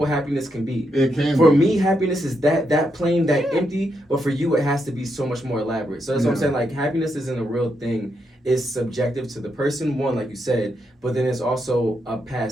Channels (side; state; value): both; normal; correlation 0.81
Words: happiness can be. It can For be. me, happiness is that plain, that empty. But for you, it has to be so much more elaborate. So that's what I'm Yeah. saying. Like happiness isn't a real thing. It's subjective to the person. One, like you said, but then it's also a